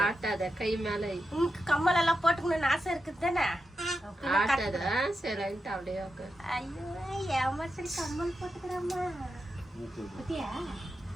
ಆಟದ ಕೈ ಮೇಲೆ ಕಮ್ಮಲೆಲ್ಲ ಪೋಟ್ಕೊಂಡು ಆಸೆ இருக்குதானே ஆட்டத சைலண்ட் அப்படியே உட்கார். ஐயோ ஏமாச்சல் கம்மல் போட்டுக்கறம்மா. குட்டியா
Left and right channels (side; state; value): both; normal; correlation 0.88